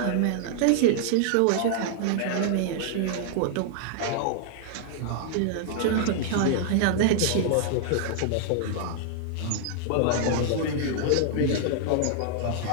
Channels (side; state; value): both; different; correlation -0.01